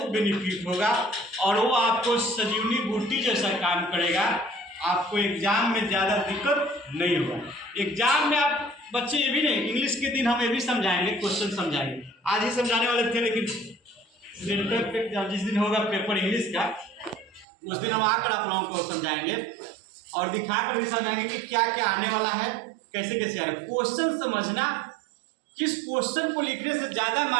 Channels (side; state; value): left; drops out; at 17.4 s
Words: बेनिफिट होगा और वो आपको संजीवनी बूटी जैसा काम करेगा। आपको एग्जाम में ज़्यादा दिक्कत नहीं होगा। एग्जाम में आप बच्चे ये भी नहीं, इंग्लिश के दिन हम ये भी समझाएंगे, क्वेश्चन समझाएंगे। आज ही समझाने वाले थे, लेकिन सेंटर पे जिस दिन होगा पेपर इंग्लिश का, उस दिन हम आकर आप लोगों को समझाएंगे और दिखाकर भी समझाएंगे कि क्या क्या आने वाला है, कैसे कैसे आ रहा है। क्वेश्चन समझना, किस क्वेश्चन को लिखने से ज़्यादा